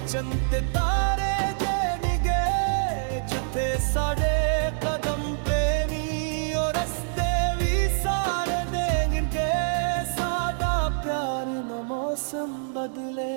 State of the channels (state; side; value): silent; left; 61 dB below the other